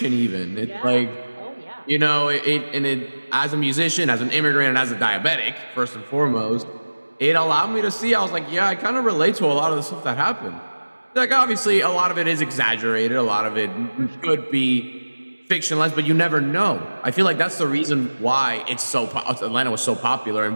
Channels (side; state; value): both; inverted; correlation -1.00